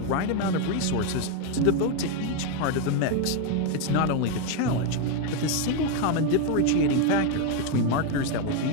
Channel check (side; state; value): both; different; correlation 0.01